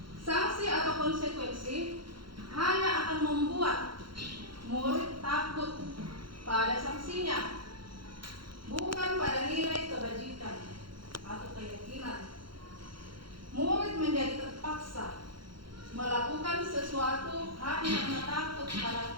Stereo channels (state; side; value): late; left; 0.73 ms